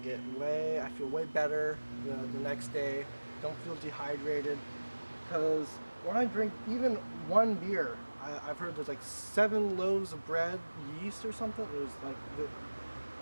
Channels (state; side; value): inverted; both; correlation -1.00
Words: feel way better the next day. Don't feel dehydrated. Because when I drink even one beer, I've heard there's like 7 loaves of bread, yeast or something. There's